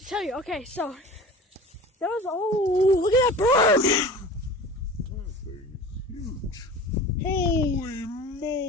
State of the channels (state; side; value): normal; both; correlation 0.38